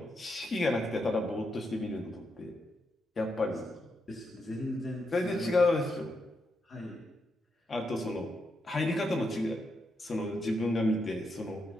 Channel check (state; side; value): normal; both; correlation 0.82